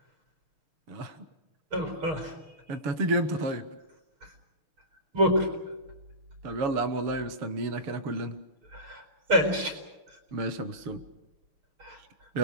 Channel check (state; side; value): late; left; 6.5 ms